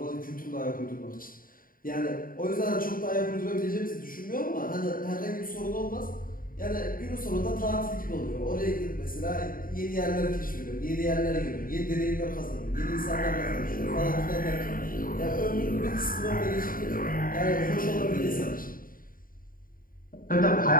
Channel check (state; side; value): late; right; 0.41 ms